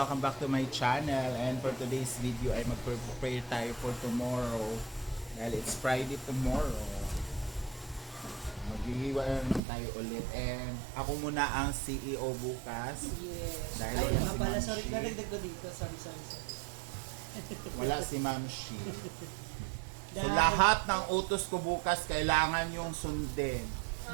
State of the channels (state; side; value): drops out; left; at 9.6 s